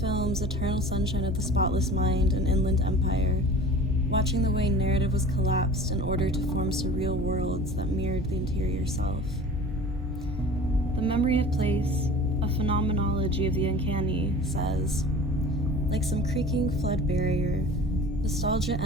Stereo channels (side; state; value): both; normal; correlation 0.41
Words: Eternal Sunshine of the Spotless Mind and Inland Empire, watching the way narrative was collapsed in order to form surreal worlds that mirrored the interior self. The memory of place, a phenomenology of the uncanny, says, like some creaking flood barrier, nostalgia